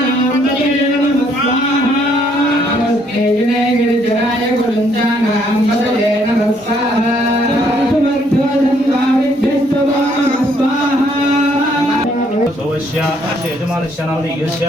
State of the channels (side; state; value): both; normal; correlation 0.68